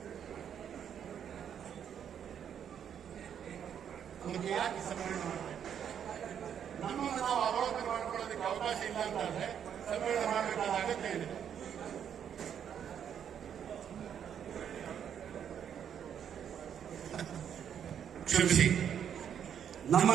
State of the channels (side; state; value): left; quieter; 8.7 dB